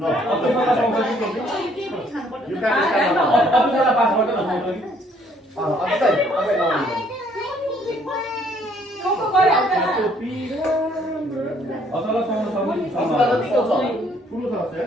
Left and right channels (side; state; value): both; normal; correlation 0.64